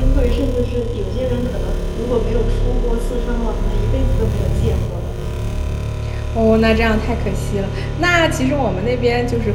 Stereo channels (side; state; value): both; identical; correlation 1.00